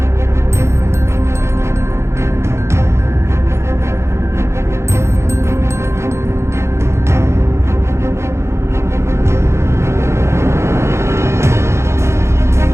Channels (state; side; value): late; left; 0.13 ms